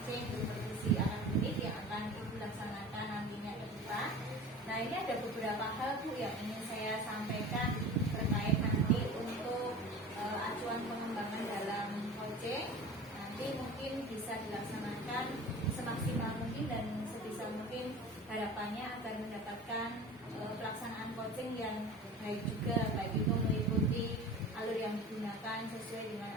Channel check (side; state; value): both; normal; correlation 0.37